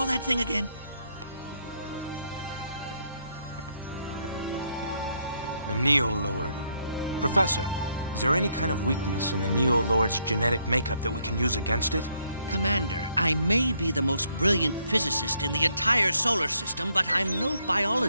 that thing again? The Neo-Lord. Professor, is there any kind of weakness in the Neo-Lord's genetic makeup that we can use against it? Commander, I may be the most brilliant physicist in the entire solar system, but I'm no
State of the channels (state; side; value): inverted; both; correlation -0.72